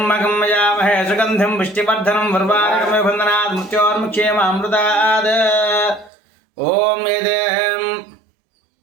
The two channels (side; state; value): left; drops out; at 6.1 s